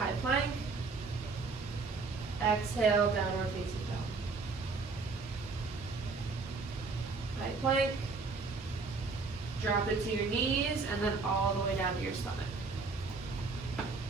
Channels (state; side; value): quieter; left; 4.2 dB